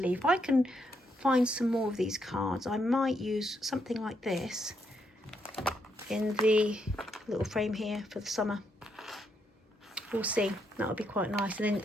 if I can find some more of these cards, I might use something like this in the little frame here for the summer. We'll see. That would be quite nice. And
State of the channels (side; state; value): both; normal; correlation 0.77